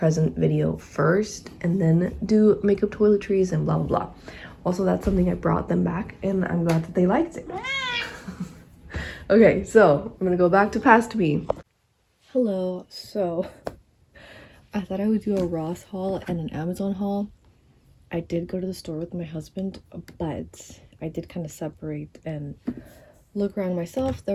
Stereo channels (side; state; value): both; identical; correlation 1.00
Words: video first and then do makeup toiletries and blah blah blah. Also, that's something I brought them back and I'm glad that they liked it. Okay, so I'm gonna go back to past me. Hello, so I thought I would do a Ross haul and an Amazon haul. I did go to the store with my husband, but I did kind of separate and look around myself.